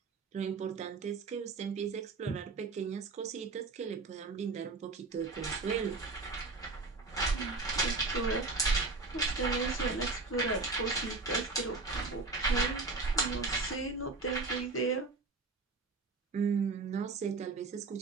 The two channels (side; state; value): left; quieter; 3.9 dB